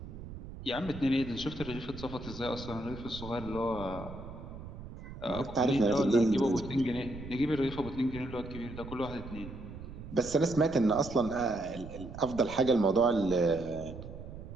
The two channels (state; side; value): noise; right; rumble, 12 dB below the sound